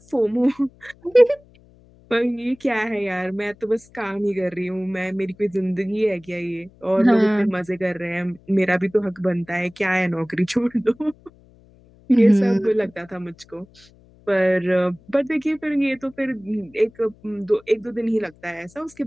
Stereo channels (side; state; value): left; noise; hum, 28 dB below the sound